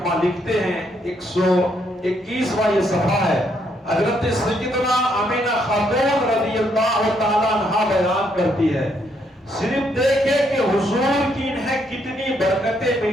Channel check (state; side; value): normal; both; correlation 0.73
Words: لکھتے ہیں، 121واں یہ صفحہ ہے. حضرت سیدنا آمینہ خاتون رضی اللہ تعالیٰ عنہا بیان کرتی ہے، صرف دیکھے کہ حضور کی انہیں کتنی برکتیں